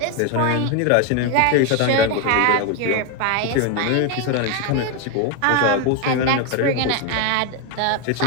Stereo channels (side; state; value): both; different; correlation 0.01